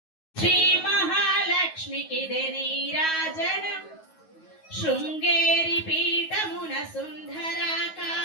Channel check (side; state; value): right; late; 9.4 ms